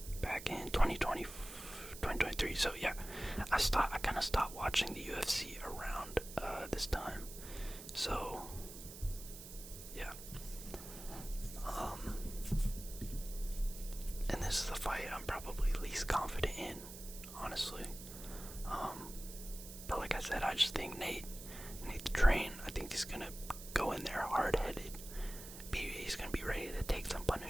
Back in 2023. So yeah, I kind of stopped watching the UFC around this time. So yeah, and this is the fight I'm probably least confident in, honestly. But like I said, I just think Nate the Train, I think he's gonna go in there hard-headed. He's gonna be ready to take some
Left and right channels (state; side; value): noise; right; hiss, 13 dB below the sound